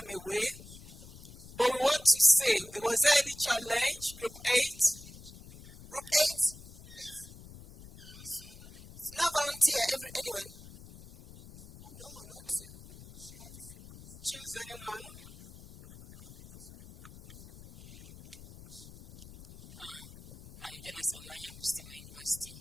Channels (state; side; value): noise; left; rumble, 18 dB below the sound